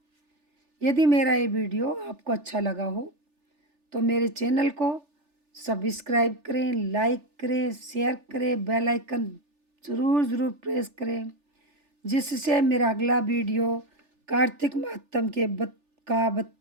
यदि मेरा ये वीडियो आपको अच्छा लगा हो तो मेरे चैनल को सब्सक्राइब करें, लाइक करें, शेयर करें, बेल आइकन ज़रूर प्रेस करें, जिससे मेरा अगला वीडियो कार्तिक महात्म के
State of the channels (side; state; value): left; late; 3.4 ms